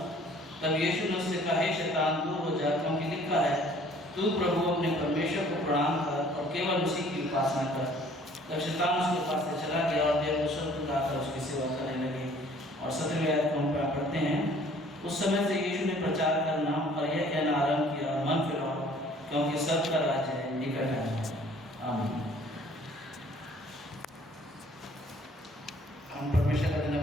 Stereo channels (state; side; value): normal; both; correlation 0.55